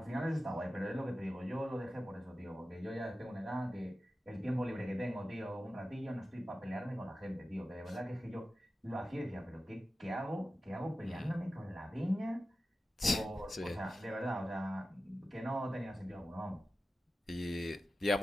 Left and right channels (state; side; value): normal; both; correlation 0.93